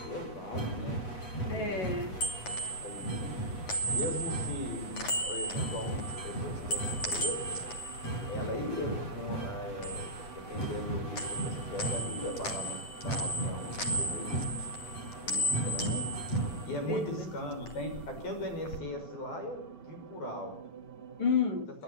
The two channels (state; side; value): late; right; 9.4 ms